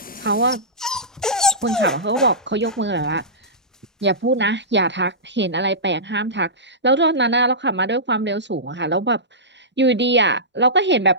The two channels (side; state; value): both; normal; correlation -0.18